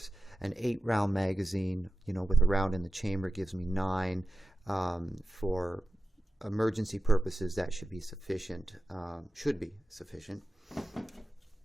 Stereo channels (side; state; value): both; normal; correlation 0.94